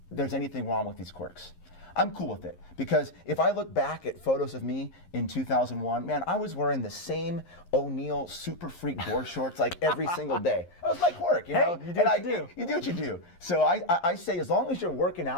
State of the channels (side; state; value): right; late; 11 ms